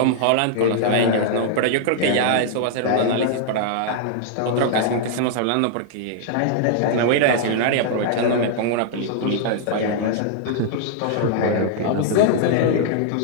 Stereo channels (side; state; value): both; different; correlation -0.01